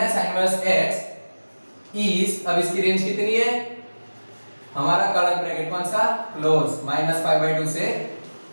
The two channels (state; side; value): inverted; both; correlation -1.00